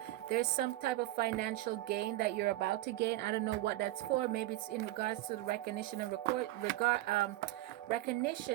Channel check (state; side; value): quieter; left; 16.0 dB